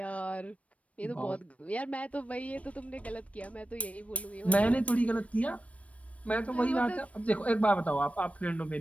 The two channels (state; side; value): late; right; 0.065 ms